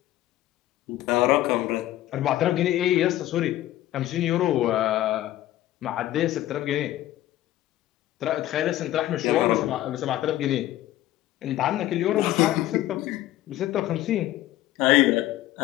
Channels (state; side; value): quieter; right; 14.5 dB